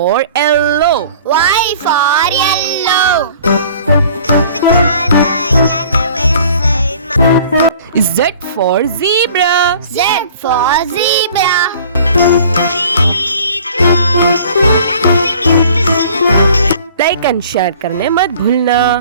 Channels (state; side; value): inverted; both; correlation -0.50